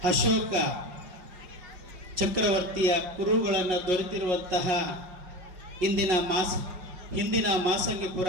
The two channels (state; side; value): late; left; 5.5 ms